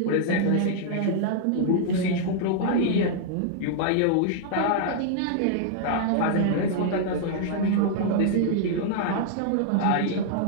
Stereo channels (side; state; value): both; different; correlation -0.01